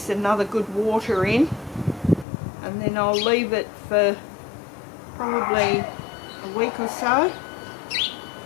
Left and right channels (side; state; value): right; drops out; at 2.2 s